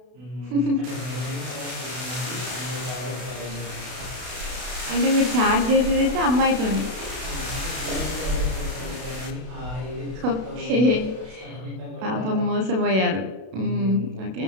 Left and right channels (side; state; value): left; late; 32 ms